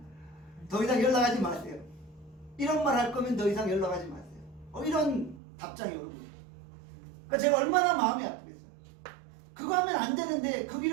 더 이상 연락하지 마세요. 이런 말 할 거면 더 이상 연락하지 마세요. 이런 답장이 오는 거예요. 그러니까 제가 얼마나 마음이 아프겠어요. 그거 하면 안 되는데 그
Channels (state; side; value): drops out; left; at 5.4 s